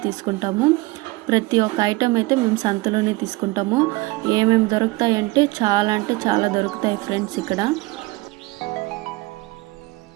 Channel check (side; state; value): left; quieter; 21.9 dB